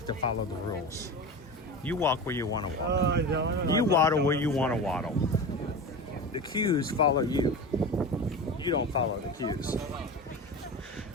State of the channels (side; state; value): both; normal; correlation 0.28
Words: to follow the rules. You walk where you want to walk. You waddle where you want to waddle. The cues follow you. You don't follow the cues.